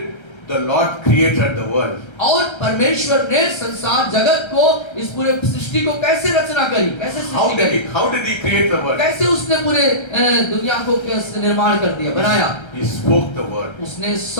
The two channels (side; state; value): right; late; 1.3 ms